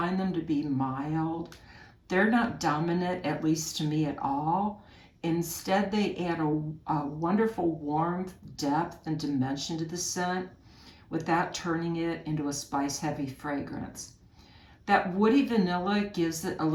them to be mild. They're not dominant, at least to me, at all. Instead, they add a wonderful warmth, depth, and dimension to the scent without turning it into a spice-heavy fragrance. That woody vanilla gives it a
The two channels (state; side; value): identical; both; correlation 1.00